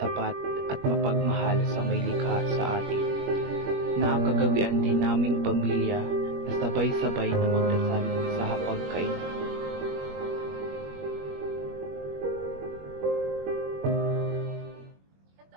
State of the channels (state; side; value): late; left; 21 ms